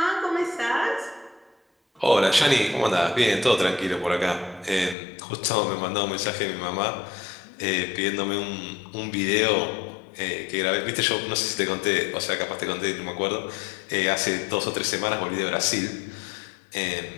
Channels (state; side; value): drops out; right; at 5.0 s